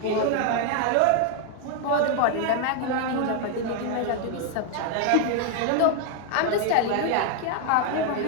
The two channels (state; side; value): different; both; correlation 0.01